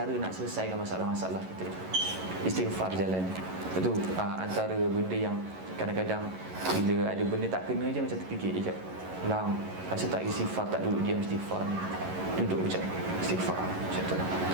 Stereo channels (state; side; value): late; left; 11 ms